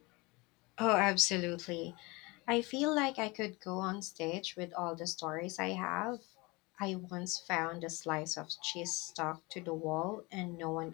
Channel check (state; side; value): quieter; right; 25.2 dB